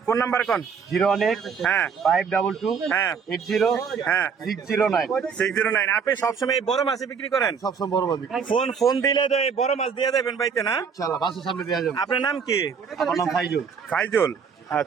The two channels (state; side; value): quieter; left; 6.2 dB